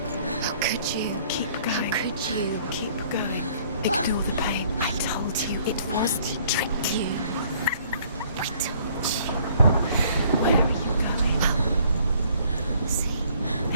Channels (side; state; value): both; inverted; correlation -0.59